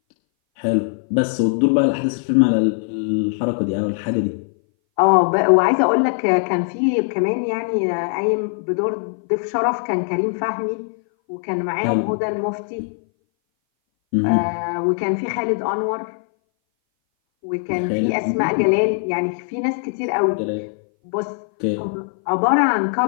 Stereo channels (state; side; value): silent; right; 60 dB below the other